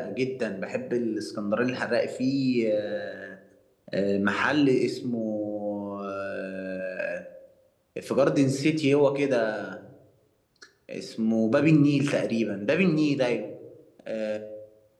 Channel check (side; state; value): both; identical; correlation 1.00